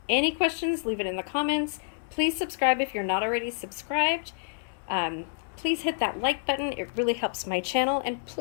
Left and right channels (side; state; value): right; silent; digital silence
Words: Any questions, leave it in the comments. Please subscribe if you're not already subscribed. Please hit that like button. It really helps my channel. And